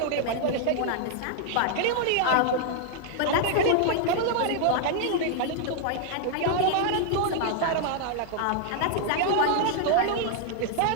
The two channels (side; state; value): both; different; correlation 0.00